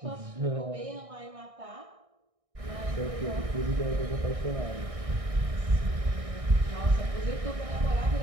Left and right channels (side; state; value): left; late; 1.6 ms